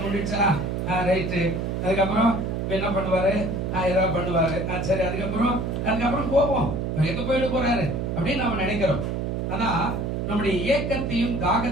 முடிச்சா ரைட்டு, அதுக்கப்புறம் என்ன பண்ணுவாரு, ஏதாவது பண்ணுவாரு, சரி, அதுக்கப்புறம் போவோம், எங்க போயிட்டு போறாரு அப்படின்னு நம்ம நினைக்கிறோம். ஆனா நம்முடைய ஏக்கத்தையும்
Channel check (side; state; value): right; noise; hum, 2 dB below the sound